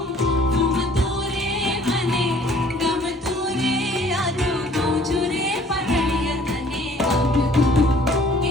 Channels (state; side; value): normal; both; correlation 0.55